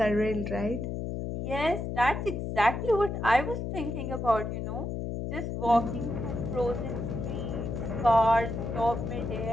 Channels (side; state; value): left; noise; hum, 4 dB below the sound